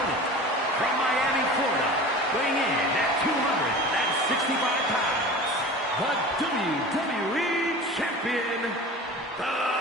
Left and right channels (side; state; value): both; normal; correlation 0.36